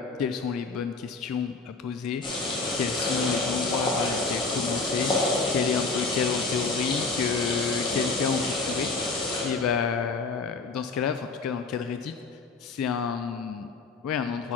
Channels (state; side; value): quieter; right; 4.1 dB